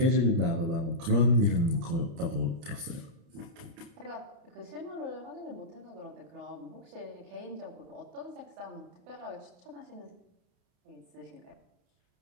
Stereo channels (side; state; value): left; late; 30 ms